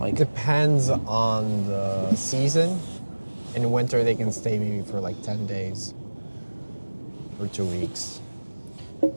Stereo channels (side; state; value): both; inverted; correlation -1.00